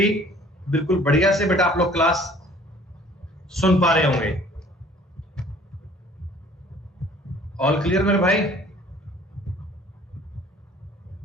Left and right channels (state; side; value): normal; both; correlation 0.54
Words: बिल्कुल बढ़िया से बेटा आप लोग क्लास सुन पा रहे होंगे। ऑल क्लियर मेरे भाई?